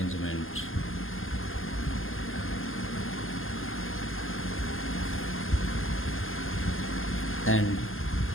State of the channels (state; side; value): late; right; 0.60 ms